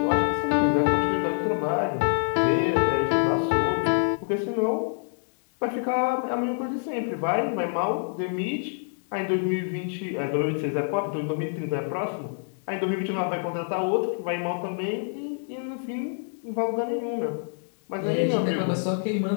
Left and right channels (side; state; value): right; silent; 61 dB below the other